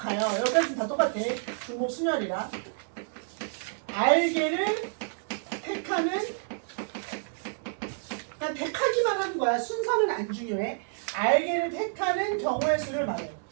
여기까지 다 똑같아. 중복 순열이라. r개를 택하는, 그냥 택하기만 하는 거야. 순서는 안 중요해. r개를 택하는 경우의 수를 말해요.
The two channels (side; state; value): left; silent; digital silence